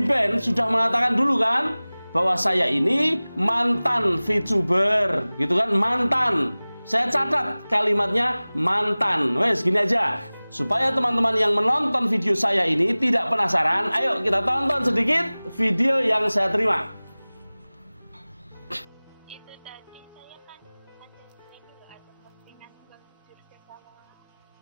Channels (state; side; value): inverted; both; correlation -0.99